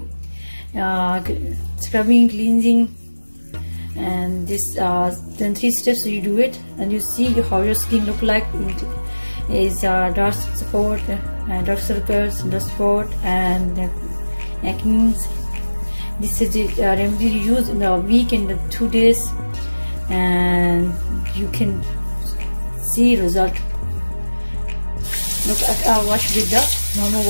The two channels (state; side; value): inverted; both; correlation -1.00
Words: scrubbing, cleansing, and this then 3 steps you do it, and you see how your skin look like. It is dark spot, dark circles, dark spot, and acne. This is the remedy you use in a week, in the 2 days, and you can see result. Look, I wash with the normal